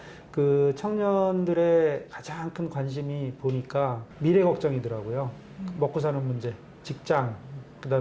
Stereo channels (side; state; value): both; identical; correlation 1.00